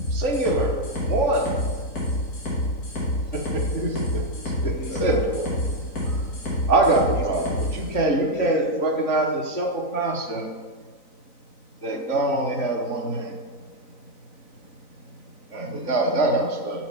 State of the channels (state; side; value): late; right; 3.9 ms